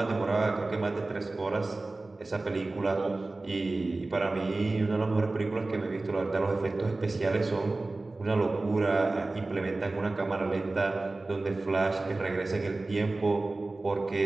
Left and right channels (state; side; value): quieter; left; 3.1 dB